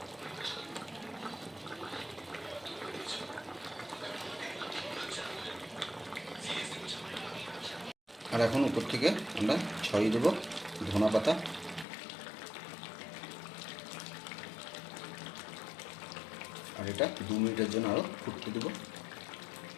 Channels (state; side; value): drops out; right; at 11.9 s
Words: আর এখন উপর থেকে আমরা ছড়িয়ে দেবো ধনা পাতা। আর এটা 2 মিনিটের জন্য আরও ফুটতে দেবো।